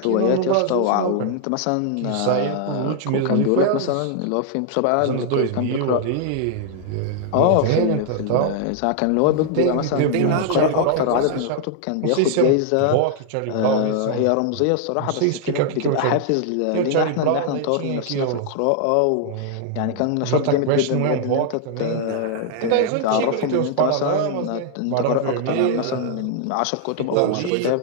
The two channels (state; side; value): different; both; correlation -0.01